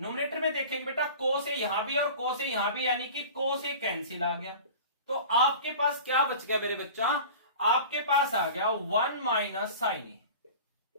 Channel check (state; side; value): inverted; both; correlation -0.39